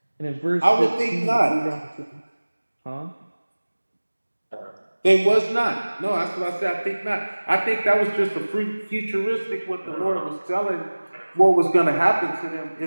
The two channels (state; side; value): inverted; both; correlation -1.00